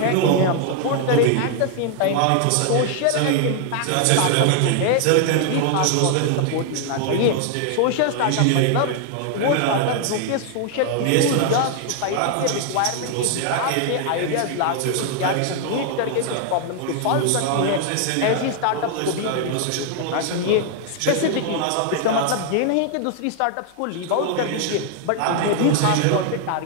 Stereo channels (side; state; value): both; different; correlation 0.00